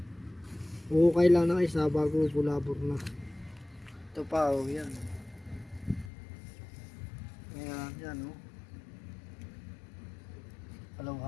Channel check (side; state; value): right; drops out; at 6.1 s